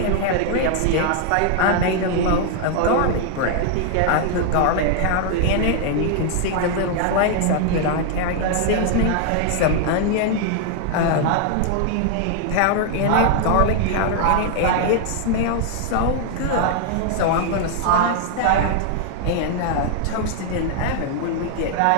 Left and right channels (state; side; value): different; both; correlation 0.00